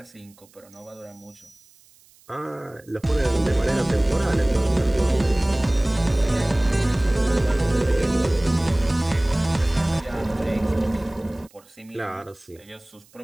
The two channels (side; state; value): right; noise; hiss, 29 dB below the sound